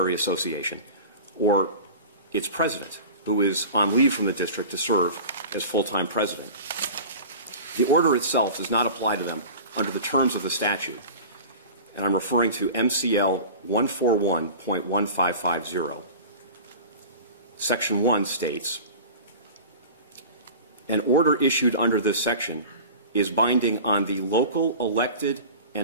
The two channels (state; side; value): inverted; both; correlation -0.36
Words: association, or its president, who is on leave from the district to serve as full-time president. The order itself does not apply to them under the terms of the statute, and I'm referring to MCL 141.1550. Section 1 states, an order issued under this section is binding on the local elected